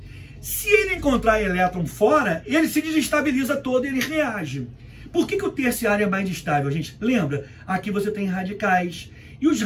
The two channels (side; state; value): both; identical; correlation 1.00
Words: Se ele encontrar elétron fora, ele se desestabiliza todo e ele reage. Por que o terciário é mais estável, gente? Lembra? Aqui você tem radicais. E os